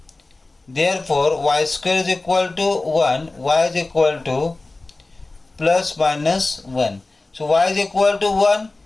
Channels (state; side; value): quieter; right; 3.2 dB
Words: Therefore y square is equal to 1, y is equal to plus minus 1. So y is equal to 1,